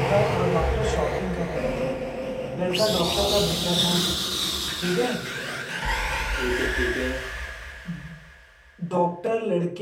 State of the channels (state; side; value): identical; both; correlation 1.00